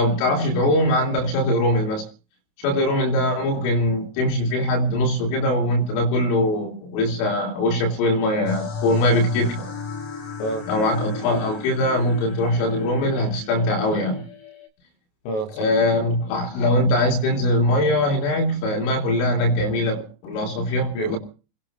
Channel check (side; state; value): right; late; 28 ms